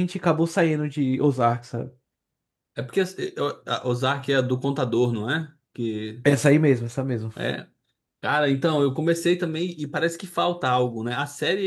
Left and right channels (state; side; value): identical; both; correlation 1.00